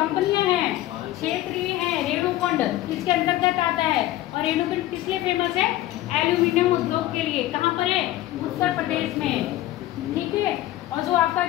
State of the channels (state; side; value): quieter; right; 15.1 dB